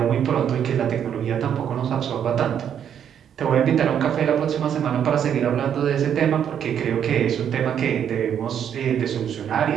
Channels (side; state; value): left; quieter; 8.9 dB